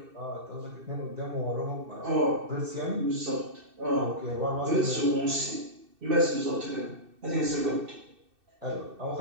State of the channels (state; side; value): late; left; 2.6 ms